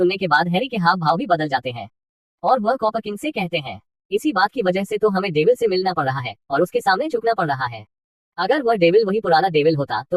के बाद हैरी के हाव भाव भी बदल जाते हैं और वह कॉपर किंग से कहते हैं, इसी बात की वजह से तो हमें डेविल से मिलना पड़ रहा है और उसके सामने झुकना पड़ रहा है। अगर वह डेविल वही पुराना डेविल होता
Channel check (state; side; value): identical; both; correlation 1.00